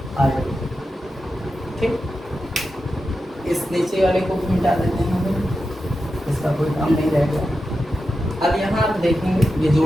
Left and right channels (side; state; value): both; normal; correlation 0.90